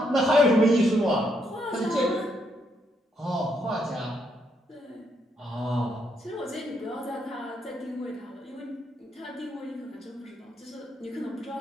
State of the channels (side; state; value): both; normal; correlation 0.75